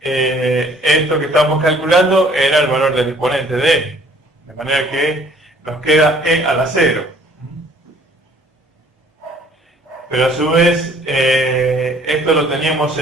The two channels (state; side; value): normal; both; correlation 0.57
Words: que estábamos calculando era el valor del exponente de e. De manera que nos queda e a la 0. Pero a su vez, esto lo teníamos